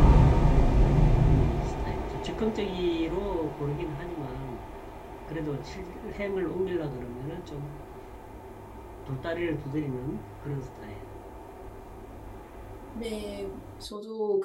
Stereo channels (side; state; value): both; identical; correlation 1.00